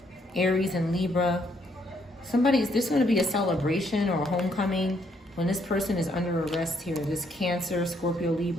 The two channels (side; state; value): both; normal; correlation 0.71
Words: Aries, and Libra. There's going to be a celebration or a homecoming when this person is under arrest here. This Cancer, Scorpio,